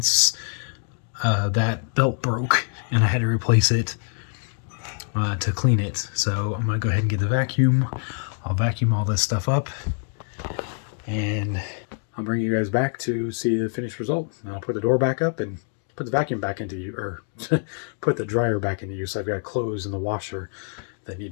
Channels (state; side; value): silent; right; 57 dB below the other